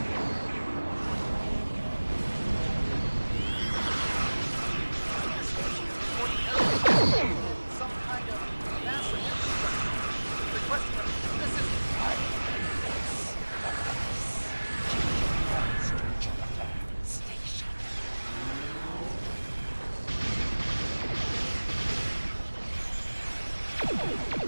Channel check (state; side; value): inverted; both; correlation -1.00